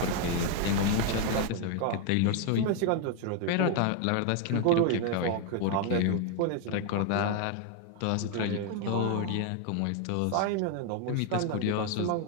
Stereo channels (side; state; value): both; different; correlation 0.01